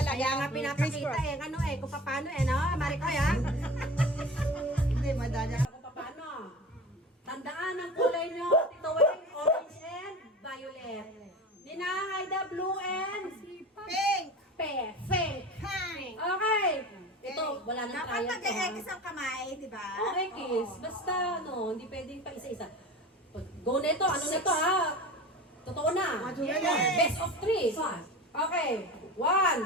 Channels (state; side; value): normal; both; correlation 0.34